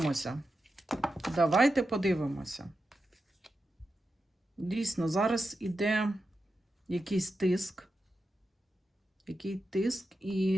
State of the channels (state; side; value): normal; both; correlation 0.89